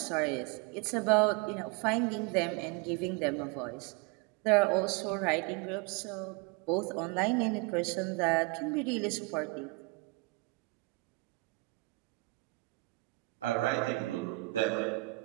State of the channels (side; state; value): left; quieter; 24.8 dB